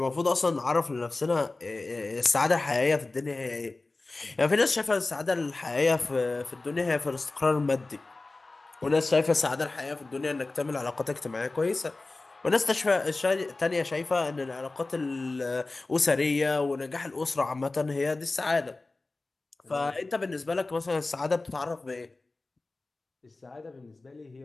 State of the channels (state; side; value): quieter; right; 3.3 dB